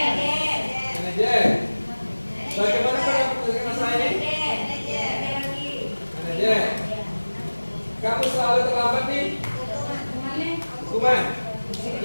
Manajer. Bagaimana pendapat masalah ini? Manajer. Kamu selalu terlambat nih? Hukuman?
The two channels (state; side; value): inverted; both; correlation -1.00